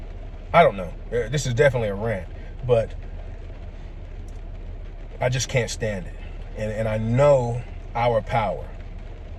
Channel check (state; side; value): identical; both; correlation 1.00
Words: I don't know. This is definitely a rant, but I just can't stand it. And I know our power.